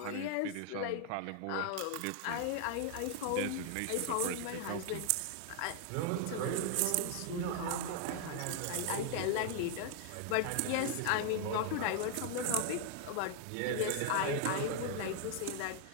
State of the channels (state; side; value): different; both; correlation 0.00